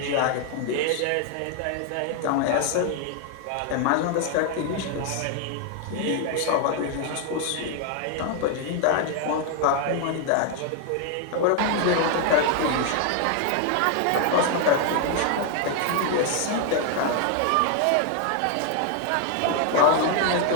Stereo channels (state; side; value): different; both; correlation 0.00